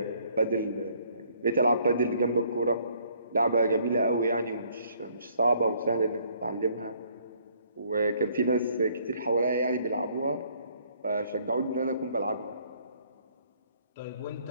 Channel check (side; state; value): both; inverted; correlation -0.64